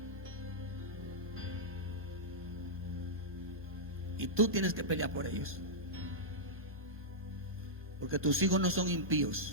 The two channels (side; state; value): both; normal; correlation -0.11